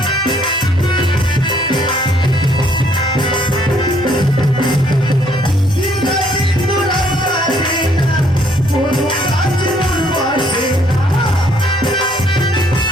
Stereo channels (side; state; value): both; normal; correlation 0.66